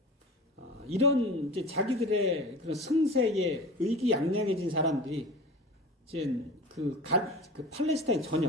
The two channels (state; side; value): normal; both; correlation 0.36